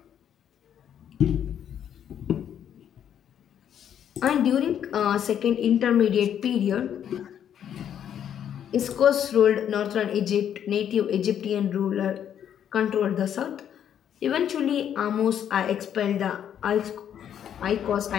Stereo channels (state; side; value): quieter; right; 9.4 dB